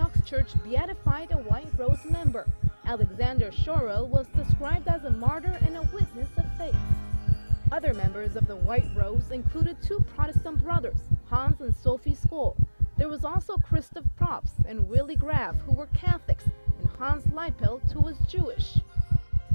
Church beatified a White Rose member. Alexander Schorel was described as a martyr and a witness of faith. Other members of the White Rose included two Protestant brothers, Hans and Sophie Skoll. There was also Christoph Probst and Willy Graf, who were Catholics, and Hans Leipelt, who was Jewish.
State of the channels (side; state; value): both; inverted; correlation -1.00